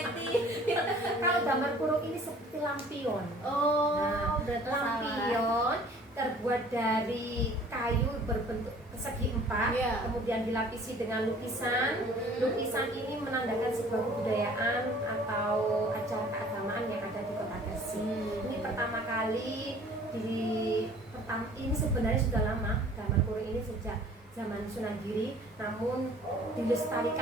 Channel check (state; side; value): normal; both; correlation 0.51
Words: Kalau gambar kurung ini seperti lampion. Oh, Nah, berarti salah. lampion terbuat dari kayu berbentuk persegi empat, Iya. kemudian dilapisi dengan lukisan. Lukisan ini menandakan sebuah kebudayaan atau acara keagamaan yang ada di Kota Gresik. Ini pertama kali ini sebenarnya sudah lama, gambar kurung ini sejak zaman Sunan Giri, namun